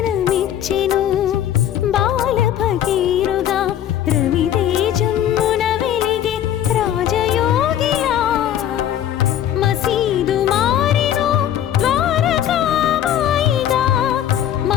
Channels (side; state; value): right; quieter; 10.8 dB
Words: బాల భగీరథుడా రవితేజమున వెలిగే రాజయోగిలా మసీదు మారెను ద్వారకామాయిగా